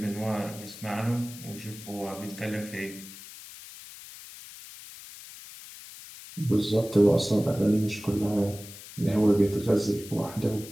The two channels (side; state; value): left; noise; hiss, 15 dB below the sound